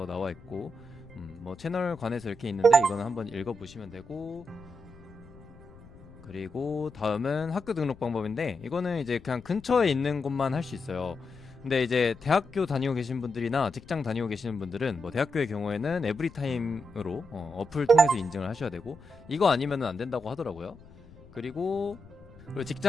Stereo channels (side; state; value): left; noise; rumble, 21 dB below the sound